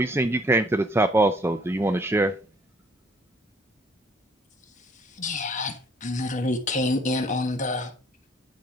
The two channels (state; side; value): normal; both; correlation 0.60